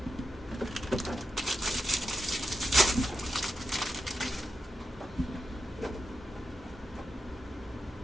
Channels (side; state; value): both; normal; correlation 0.87